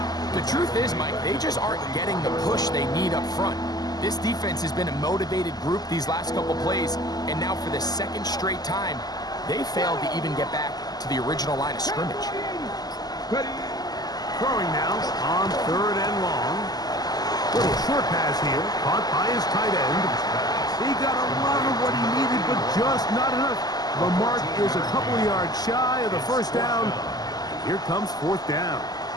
The truth is, Mike, they just aren't getting the push they need up front. This defense has been a motivated group these last couple plays, and now for the 2nd straight time, they failed to even get back to the original line of scrimmage. Throwing now on 3rd and long. Little short pass here, caught by his tight end. He got a lot of what he needed, but just not enough. The mark is a couple of yards shy of the 1st down. Here comes 4th down.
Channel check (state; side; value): late; right; 0.19 ms